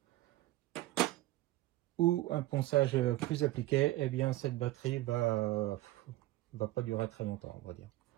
ou un ponçage plus appliqué, eh bien cette batterie va pas durer très longtemps, on va dire.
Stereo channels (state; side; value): quieter; left; 17.2 dB